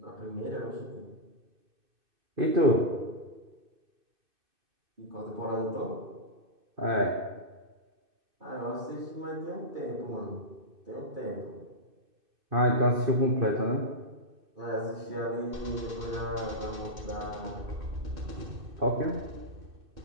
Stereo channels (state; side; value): late; left; 2.6 ms